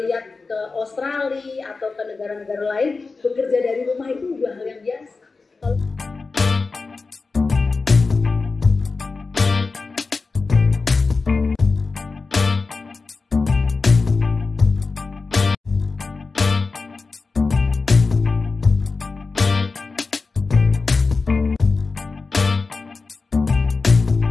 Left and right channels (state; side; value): quieter; right; 4.1 dB